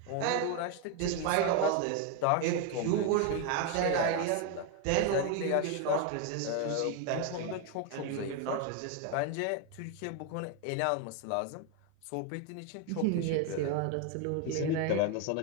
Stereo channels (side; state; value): both; different; correlation 0.01